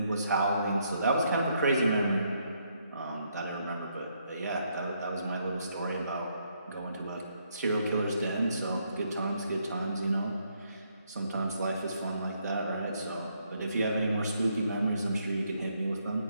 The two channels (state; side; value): inverted; both; correlation -0.74